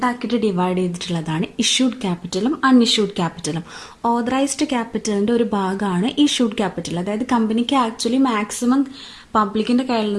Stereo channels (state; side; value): identical; both; correlation 1.00